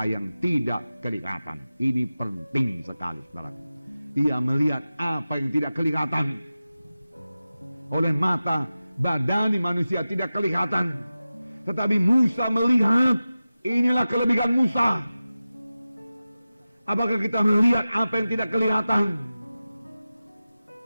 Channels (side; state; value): both; inverted; correlation -0.95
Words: yang tidak kelihatan. Ini penting sekali, saudara. Ia melihat apa yang tidak kelihatan. Oleh mata badani manusia tidak kelihatan. Tetapi Musa melihat. Inilah kelebihan Musa. Apakah kita melihat apa yang tidak kelihatan?